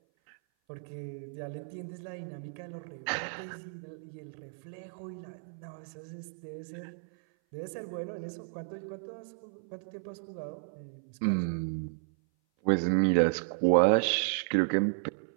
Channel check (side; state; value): left; silent; 56 dB below the other